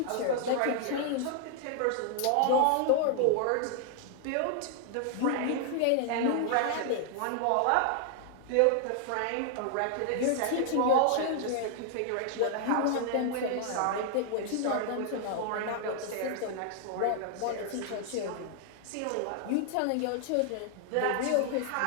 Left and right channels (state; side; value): different; both; correlation 0.00